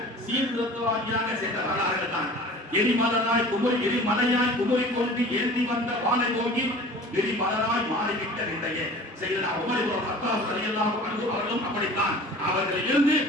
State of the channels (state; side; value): normal; both; correlation 0.42